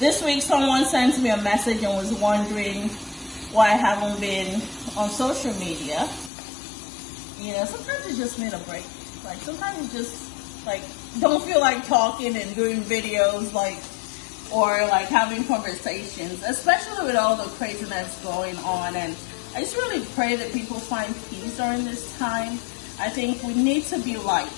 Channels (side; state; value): right; drops out; at 6.3 s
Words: week someone sent me a message and was wondering why I haven't been on social media. You know, sometimes you just need a break. Like sometimes you just like don't feel like talking and doing videos, like, or like having conversations, especially with all the craziness going on. And I just really pray that people find peace during this time. I think we need to be light.